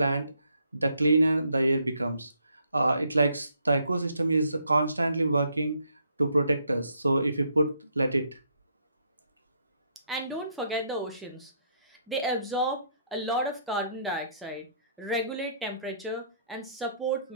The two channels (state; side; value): inverted; both; correlation -0.70